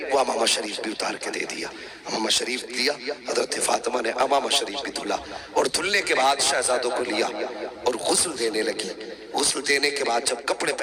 وہ امامہ شریف بھی اتار کے دے دیا، امامہ شریف دیا۔ حضرت فاطمہ نے امامہ شریف بھی دھلا، اور دھلنے کے بعد شہزادوں کو لیا اور غسل دینے لگی۔ غسل دینے کے بعد جب کپڑے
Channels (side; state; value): both; identical; correlation 1.00